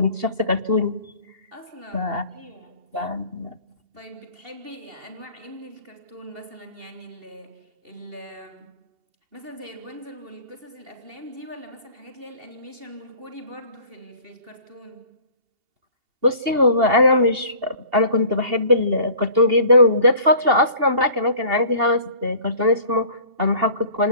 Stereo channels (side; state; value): left; late; 2.7 ms